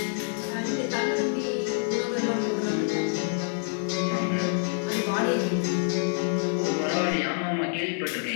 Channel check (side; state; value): right; silent; digital silence